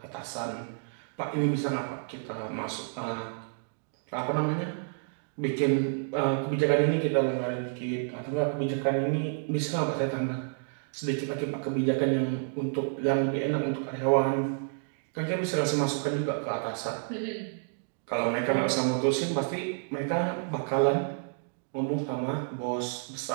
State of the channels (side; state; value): left; silent; digital silence